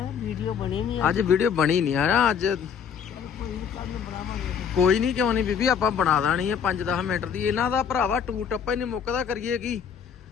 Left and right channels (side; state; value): right; quieter; 7.3 dB